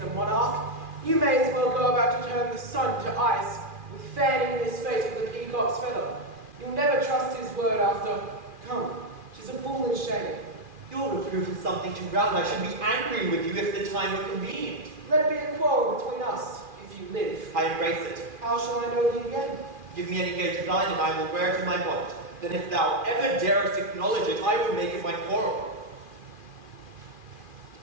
a monarch. You may as well go about to turn the sun to ice, with fanning in his face with a peacock's feather. You'll never trust his word after. Come, 'tis a foolish shame. Your reproof is something to round. I should be angry with you if the time were convenient. Let it be a quarrel between us, if you live. I embrace it. How shall I know thee again? Give me any gage of thine, and I will wear it in my bonnet. Then if thou ever darest acknowledge it, I will make it my quarrel.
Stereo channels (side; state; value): left; late; 2.4 ms